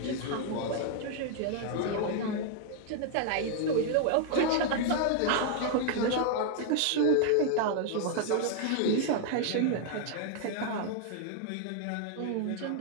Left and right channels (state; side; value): different; both; correlation 0.00